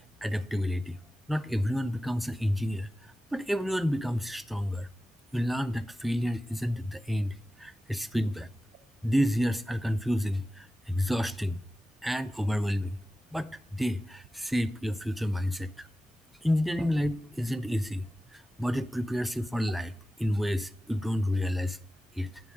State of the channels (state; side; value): normal; both; correlation 0.96